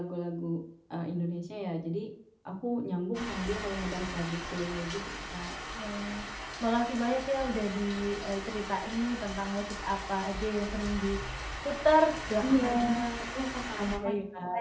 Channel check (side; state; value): both; identical; correlation 1.00